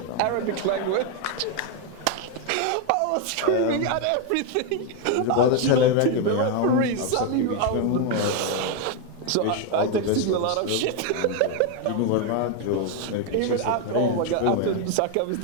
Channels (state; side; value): different; both; correlation 0.01